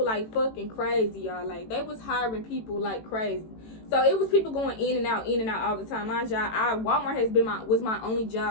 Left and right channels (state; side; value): late; right; 18 ms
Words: like fucking crazy, y'all. Like, they was hiring people like crazy. So it was people going in and out all the time. My job, Walmart was my only